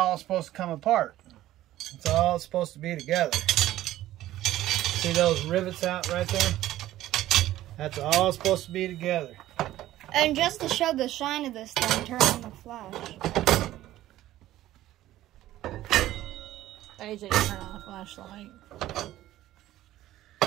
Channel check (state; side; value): quieter; left; 14.4 dB